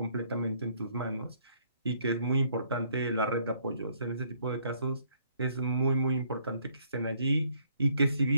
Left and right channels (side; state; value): both; inverted; correlation -0.66